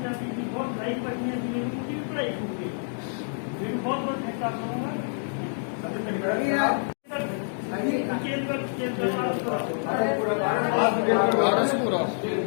चाहती थी, बहुत भाई बच्चियाँ थी, उनकी भी पढ़ाई छूट गई। लेकिन बहुत बहुत धन्यवाद करूँगा।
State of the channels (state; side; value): silent; right; digital silence